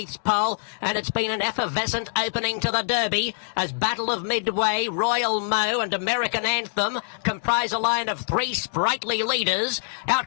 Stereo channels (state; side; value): silent; right; 62 dB below the other